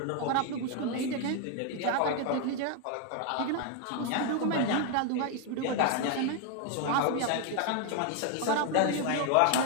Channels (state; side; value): different; both; correlation 0.01